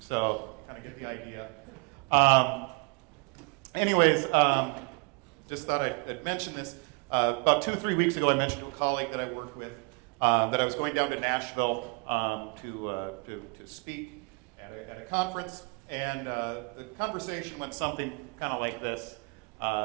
kind of get the idea. Anyways, just thought I'd mention this. About 2 or 3 weeks ago, I mentioned to a colleague that I worked with that I was going down to Nashville to speak at a conference, and the conversation went something kind of like this.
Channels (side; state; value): left; quieter; 31.5 dB